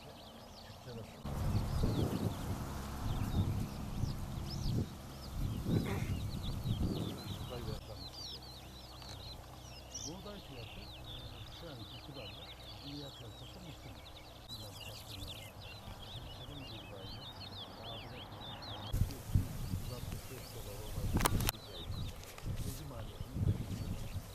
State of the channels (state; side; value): identical; both; correlation 1.00